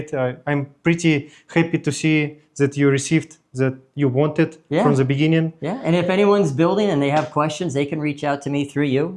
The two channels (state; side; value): identical; both; correlation 1.00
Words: I'm pretty happy to see that you received that you wanted Yeah. from the beginning. Yeah, and if anyone's building and they have questions, they can reach out to me through